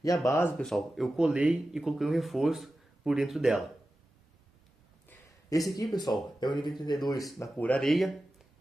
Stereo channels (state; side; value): normal; both; correlation 0.94